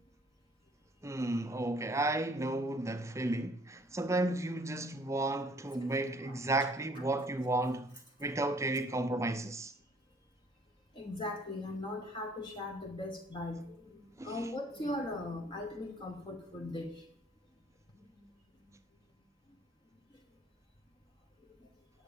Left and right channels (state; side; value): normal; both; correlation 0.59